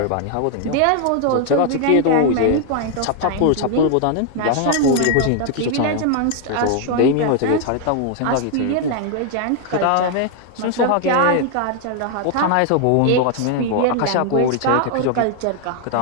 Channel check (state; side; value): different; both; correlation 0.00